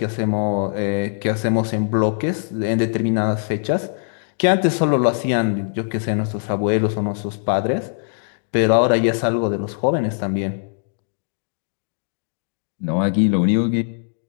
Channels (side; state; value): right; silent; digital silence